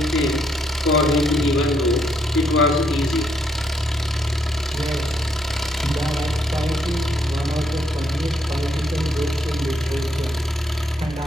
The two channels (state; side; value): normal; both; correlation 0.74